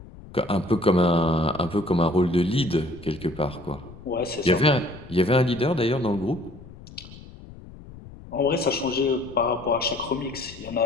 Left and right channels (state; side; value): noise; left; rumble, 17 dB below the sound